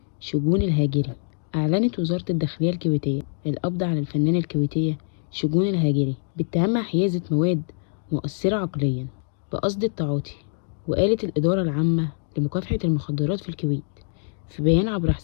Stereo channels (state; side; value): silent; right; digital silence